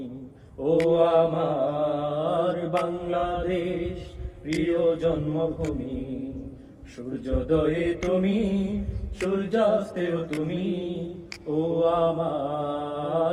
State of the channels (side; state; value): both; identical; correlation 1.00